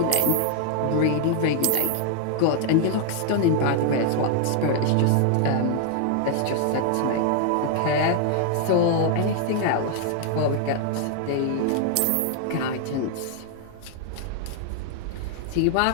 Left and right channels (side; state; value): both; different; correlation 0.00